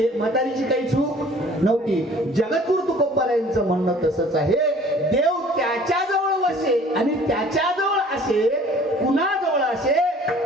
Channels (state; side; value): normal; both; correlation 0.51